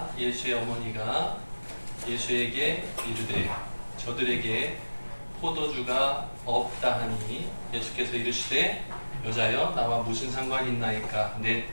예수의 어머니가 예수에게 이르되 저들에게 포도주가 없다 하니 예수께서 이르시되 여자여 나와 무슨 상관이 있나이까 내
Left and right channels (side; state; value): both; inverted; correlation -1.00